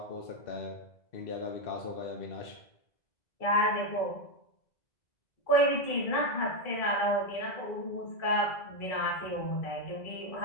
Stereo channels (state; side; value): late; right; 2.0 ms